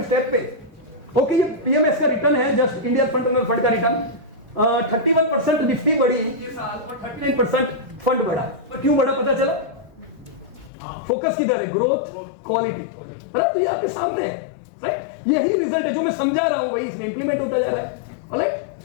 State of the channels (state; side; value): drops out; right; at 10.7 s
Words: स्टेप पे। ओके, ये पीएमएस का रिटर्न है, जस्ट इंडिया फंड फंड का रिटर्न। 31% निफ्टी बढ़ी ये साल और 39% फंड बढ़ा। पर क्यों बढ़ा पता चला? फोकस किधर है? ग्रोथ, क्वालिटी, बराबर? तो ये आपके सामने है, राइट? यही रिजल्ट है जो मैं समझा रहा हूं, वही इसमें इंप्लीमेंट होता जा रहा है, राइट?